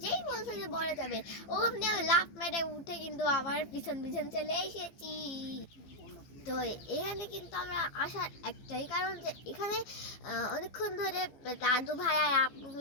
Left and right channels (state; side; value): late; right; 15 ms